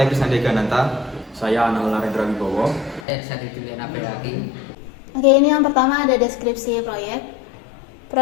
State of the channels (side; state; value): right; drops out; at 3.1 s